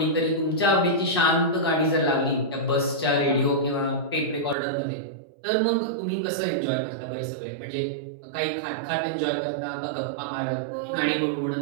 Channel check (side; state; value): left; drops out; at 4.5 s